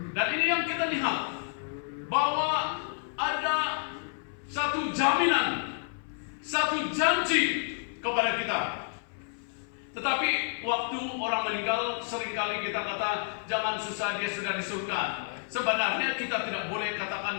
Dan ini yang kita lihat, bahwa ada satu jaminan, satu janji kepada kita. Tetapi waktu orang meninggal, seringkali kita kata, jangan susah, dia sudah di surga. Sebenarnya kita tidak boleh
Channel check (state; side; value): silent; right; 57 dB below the other